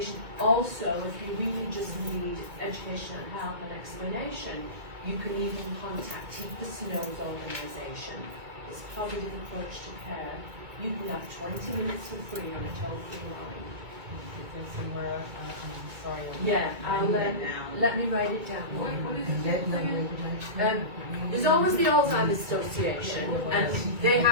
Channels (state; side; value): late; left; 1.9 ms